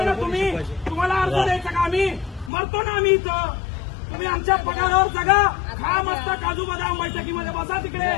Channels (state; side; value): drops out; right; at 2.5 s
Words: ना तुम्ही? तुम्हाला अर्ज द्यायचा का? आम्ही मरतो ना आम्ही इथं. तुम्ही आमच्या पगारावर जगा, खा मस्त काजू बदाम, बैठकीमध्ये बसा तिकडे.